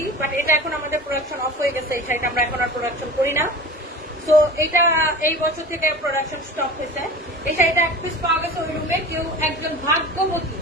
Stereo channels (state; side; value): normal; both; correlation 0.36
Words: বাট এটা এখন আমাদের প্রোডাকশন অফ হয়ে গেছে। এই শাড়িটা আমরা এখন আর প্রোডাকশন করি না, তো এটা এই বছর থেকে প্রোডাকশন স্টপ হয়েছে। এই শাড়িটা এক পিস পাওয়া গেছে ওই রুমে। কেউ একজন ভাগ্যবতী,